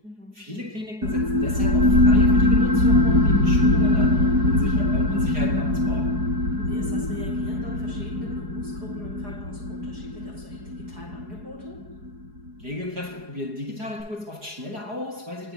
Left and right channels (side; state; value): left; late; 4.8 ms